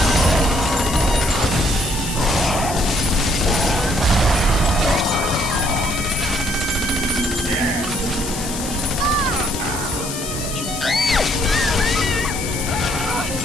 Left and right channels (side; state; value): left; noise; hiss, 7 dB below the sound